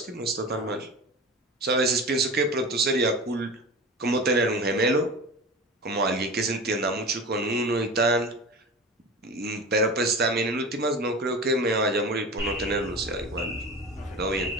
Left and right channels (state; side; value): normal; both; correlation 0.32